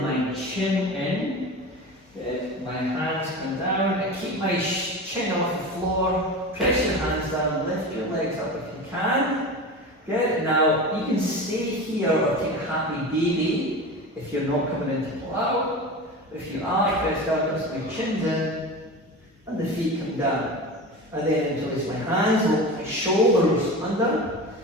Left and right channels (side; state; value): both; normal; correlation 0.29